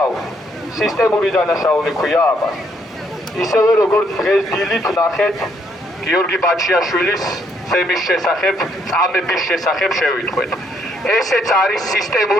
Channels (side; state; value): both; normal; correlation 0.71